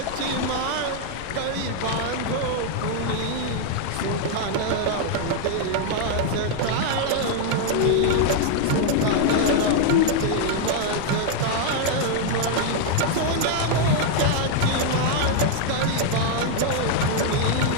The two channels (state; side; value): different; both; correlation 0.00